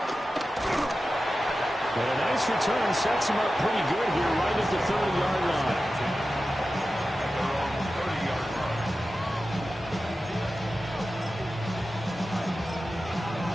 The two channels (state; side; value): normal; both; correlation 0.93